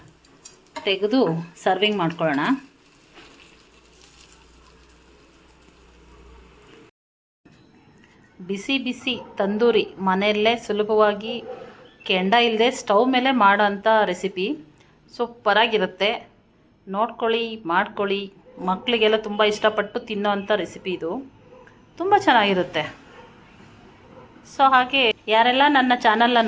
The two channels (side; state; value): both; identical; correlation 1.00